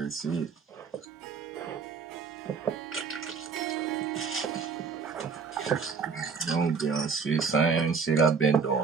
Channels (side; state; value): left; quieter; 5.5 dB